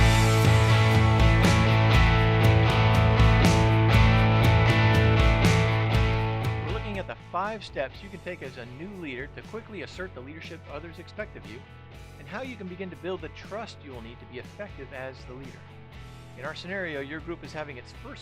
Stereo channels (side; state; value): both; identical; correlation 1.00